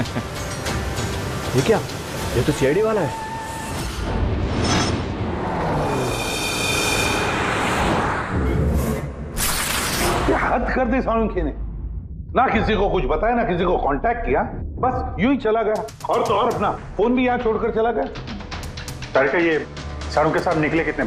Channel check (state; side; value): identical; both; correlation 1.00